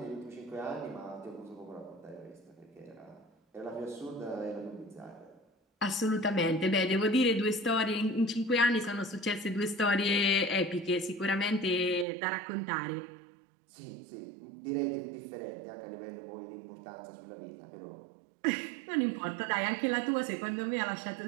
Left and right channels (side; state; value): left; drops out; at 12.1 s